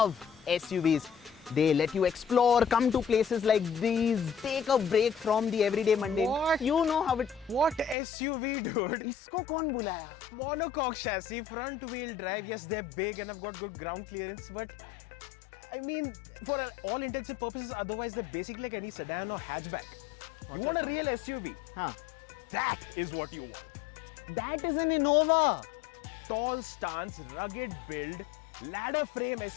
SUVs. They let you explore, come to places like these, take a break from the everyday mundane. What? You know how it... What SUV, dude? इसको कौन बुलाया? Monocoque chassis, front wheel drive. Yes, they're big and have got good ground clearance, but I mean, for all intents and purposes, otherwise they're basically like any sedan or hatchback. You want a real SUV? Huh. That is what you want. That is an Innova. Tall stance, rugged build, ladder frame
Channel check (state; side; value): drops out; right; at 8.0 s